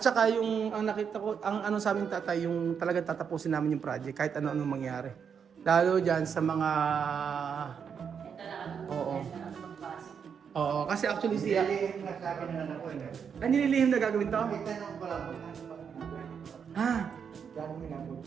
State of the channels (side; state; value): left; quieter; 7.0 dB